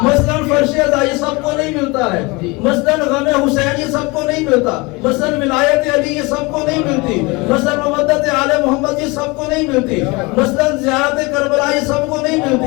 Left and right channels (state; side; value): quieter; right; 25.5 dB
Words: مثلا فرش عزا یہ سب کو نہیں ملتا ہے. مثلا غم حسین یہ سب کو نہیں ملتا. مثلا ولایت علی یہ سب کو نہیں ملتی. مثلا مودت آل محمد یہ سب کو نہیں ملتی. مثلا زیارت کربلا یہ سب کو نہیں